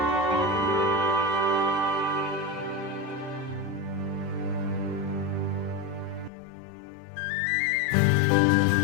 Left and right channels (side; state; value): right; drops out; at 6.3 s